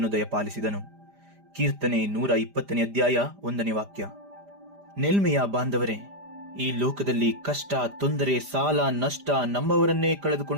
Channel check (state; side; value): late; left; 5.0 ms